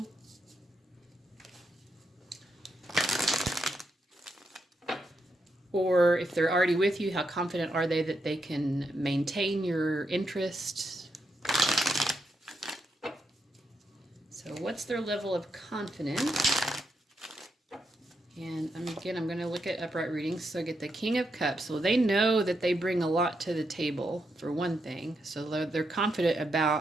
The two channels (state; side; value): normal; both; correlation 0.82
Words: Or if they're already with you, how confident are they that they can maintain your interest? So what's their level of confidence? And again, I'm going to look at upright readings. So I get the King of Cups. So they know that they bring a lot to the table, for one thing. So they're confident